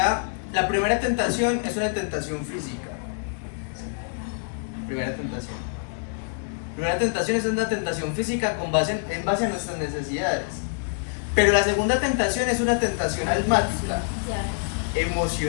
la primera tentación es una tentación física. Primera tentación. Primera tentación es una tentación física en base a nuestras necesidades. Pero la segunda tentación es una tentación almática,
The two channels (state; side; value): silent; right; 61 dB below the other